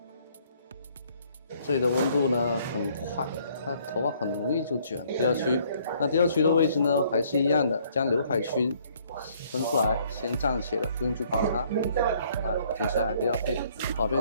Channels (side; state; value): both; inverted; correlation -0.63